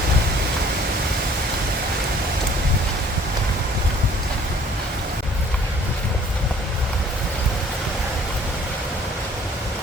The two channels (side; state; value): both; normal; correlation 0.56